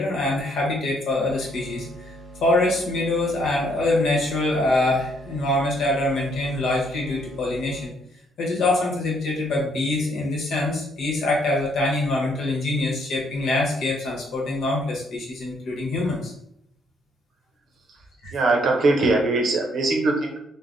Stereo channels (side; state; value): both; normal; correlation 0.69